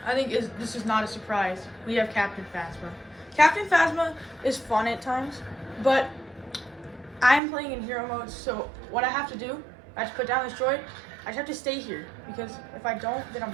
I think this is not a surprise. We have Captain Phasma. Captain Phasma is fun at times, but I'm playing in hero mode, so what I have to do, I have to put down this droid. I just have to stay here, because if I don't, then I'm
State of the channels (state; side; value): drops out; left; at 7.4 s